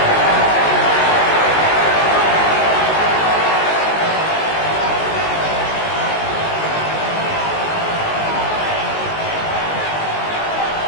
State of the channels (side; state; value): right; late; 19 ms